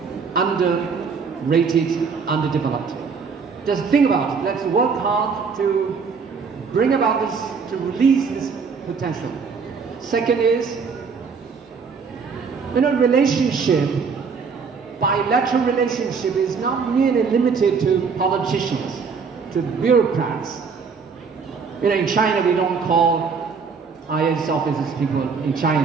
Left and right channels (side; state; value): left; quieter; 5.5 dB